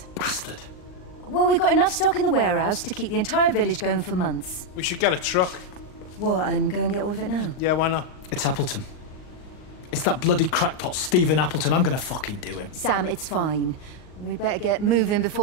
Bastard. Well, we've got enough stock in the warehouse to keep the entire village going for months. We should get a truck. What, and go and get all of it now? Yeah, why not? It's Appleton. It's that bloody crackpot, Stephen Appleton. I'm gonna fucking do him. Sam, it's fine. We better get moving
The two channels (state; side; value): late; right; 39 ms